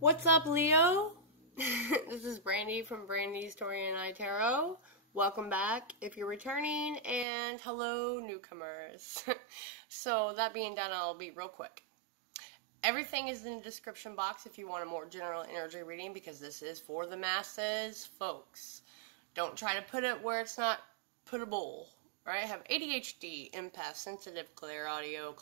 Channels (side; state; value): left; drops out; at 7.2 s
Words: What's up, Leo? This is Brandy from Brandy's Tori and I Tarot. Welcome back if you're returning, and hello, newcomers. So, that being done, I'll be real quick. Everything is in the description box if you want a more general energy reading, because this is for the masses, folks. Don't try to put it where it's not puttable. Right? I have ADHD, empath, sensitive, clairaudio,